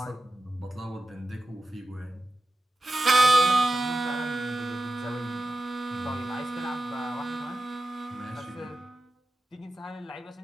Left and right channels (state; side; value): normal; both; correlation 0.93